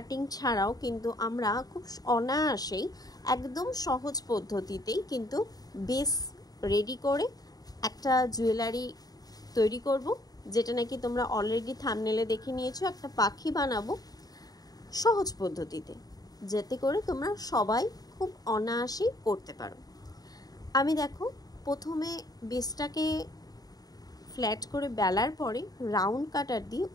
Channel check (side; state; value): right; late; 0.18 ms